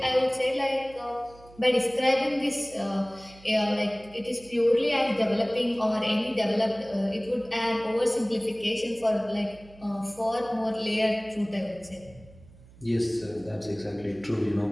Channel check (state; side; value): noise; right; hum, 23 dB below the sound